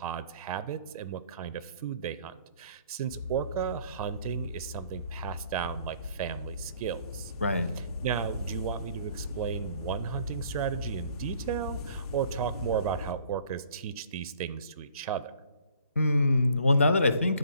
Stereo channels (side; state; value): both; inverted; correlation -0.57